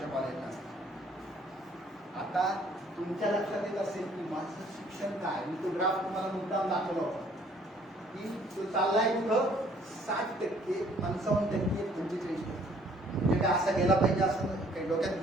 कॉलेजला असतील. आता तुमच्या लक्षात येत असेल की माझं शिक्षण काय, मी तो ग्राफ तुम्हाला मुद्दाम दाखवला होता की तो चाललाय कुठं 60%, 55%, 45%. म्हणजे काय असा गेला पाहिजे असं काही डोक्यात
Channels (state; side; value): normal; both; correlation 0.60